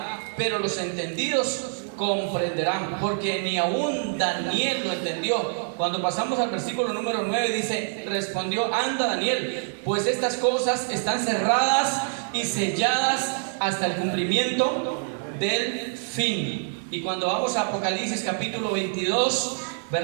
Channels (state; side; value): silent; left; 55 dB below the other